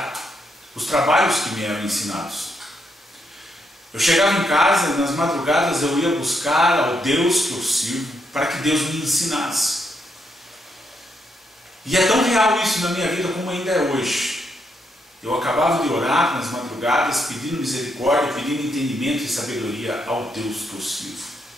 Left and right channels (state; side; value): normal; both; correlation 0.78